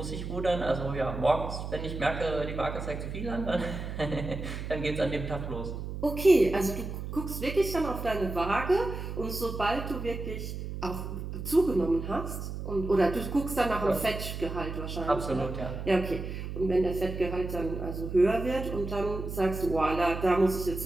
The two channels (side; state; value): right; noise; hum, 6 dB below the sound